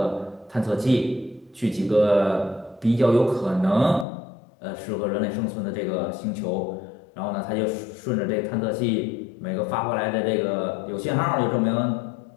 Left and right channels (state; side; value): drops out; right; at 4.0 s